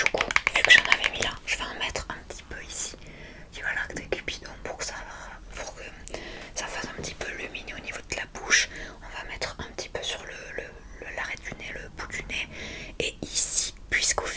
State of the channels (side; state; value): both; identical; correlation 1.00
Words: coup, vu que j'en avais mis là, je vais en mettre un petit peu ici. Tu vois là, des cupidons pour que ça fasse un petit peu lumineux au niveau de la bouche. On va mettre un petit peu sur l'arrêt du nez, le bout du nez. Et ici, puisqu'au